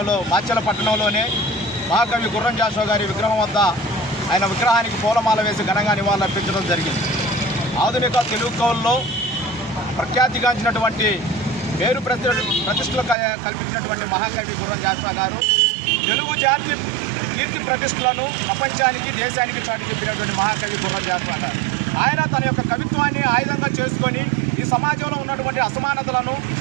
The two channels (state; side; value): drops out; left; at 13.2 s